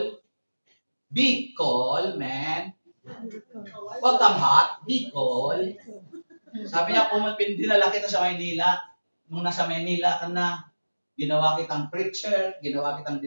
Bicol, man. Huwag kang hot. Bicol. Sabi niya, dinala kita sa Maynila. Nung nasa Maynila ka na, ginawa kitang preacher, ginawa kitang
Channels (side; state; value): both; inverted; correlation -1.00